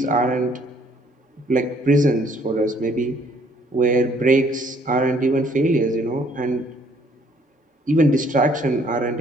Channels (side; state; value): both; normal; correlation 0.62